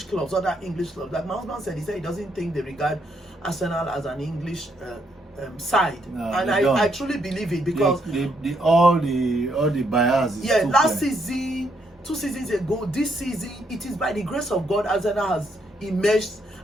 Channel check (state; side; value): normal; both; correlation 0.75